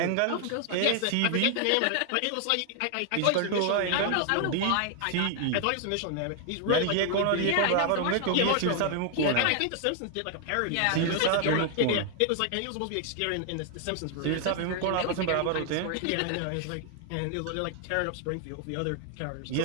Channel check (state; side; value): different; both; correlation 0.00